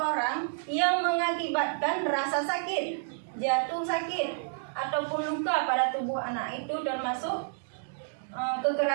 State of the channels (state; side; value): silent; left; digital silence